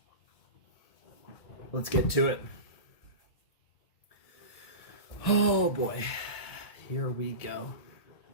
let's get to it. Oh boy. Here we go.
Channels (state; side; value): late; right; 1.7 ms